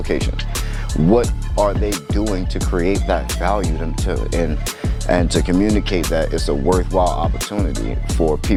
What are they doing to create that value and to communicate that it's a worthwhile opportunity for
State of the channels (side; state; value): both; identical; correlation 1.00